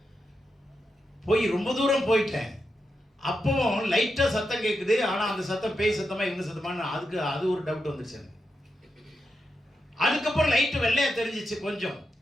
போய் ரொம்ப தூரம் போயிட்டேன். அப்பவும் லைட்டாக சத்தம் கேட்குது. ஆனால் அந்த சத்தம் பேய் சத்தமாக இவங்க சத்தமானு அது ஒரு டவுட் வந்துருச்சு எனக்கு. அதுக்கப்புறம் லைட்டு வெள்ளையாக தெரிஞ்சிச்சு கொஞ்சம்.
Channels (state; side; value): normal; both; correlation 0.87